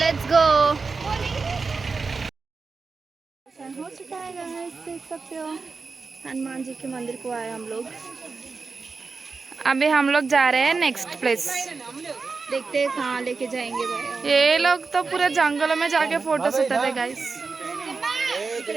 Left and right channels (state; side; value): quieter; left; 4.5 dB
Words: गो। हो चुका है गाइस, देख सकते हो हनुमान जी के मंदिर को आए हम लोग। अभी हम लोग जा रहे हैं नेक्स्ट प्लेस, देखते हैं कहाँ लेके जाएंगे भाई। ये लोग तो पूरे जंगलों में जाके फोटोस उठाते गाइस।